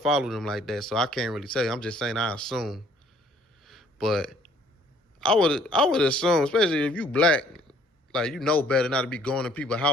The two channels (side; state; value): both; normal; correlation 0.59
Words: them like that, so I can't really tell you. I'm just saying I assume. But I would assume, especially if you black, like, you know better not to be going to people's